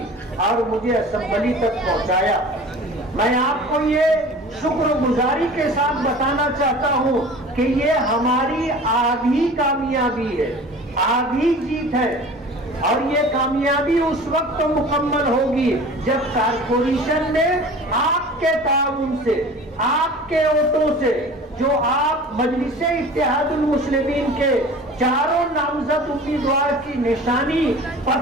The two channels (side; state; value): both; normal; correlation 0.41